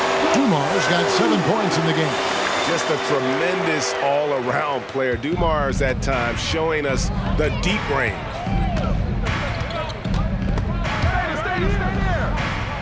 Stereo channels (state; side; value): identical; both; correlation 1.00